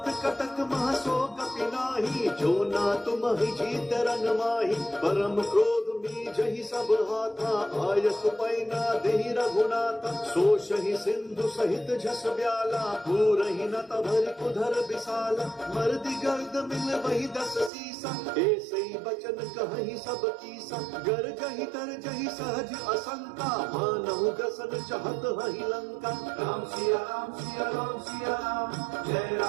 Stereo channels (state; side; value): drops out; left; at 17.7 s